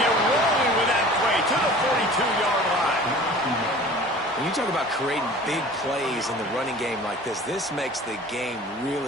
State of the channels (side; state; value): both; normal; correlation 0.43